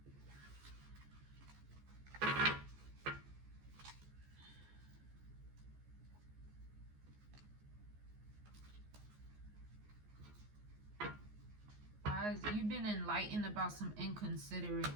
You've been enlightened about some inconsiderate,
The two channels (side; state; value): left; late; 14 ms